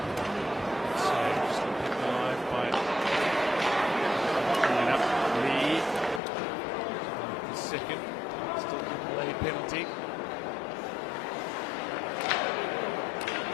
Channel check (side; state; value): right; drops out; at 6.2 s